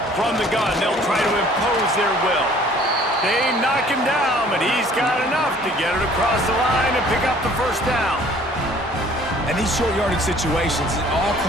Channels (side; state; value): both; normal; correlation 0.54